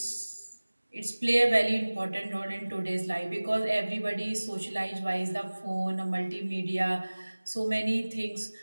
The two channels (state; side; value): inverted; both; correlation -1.00